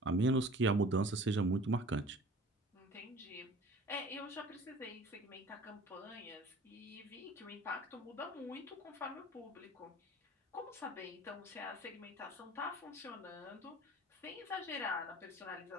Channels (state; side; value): normal; both; correlation 0.46